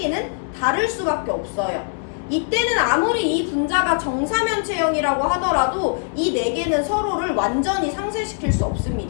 다를 수밖에 없어요. 이때는 아무리 이 분자가 정사면체형이라고 하더라도 이 4개는 서로를 완전히 상쇄시킬 수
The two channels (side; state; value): right; silent; digital silence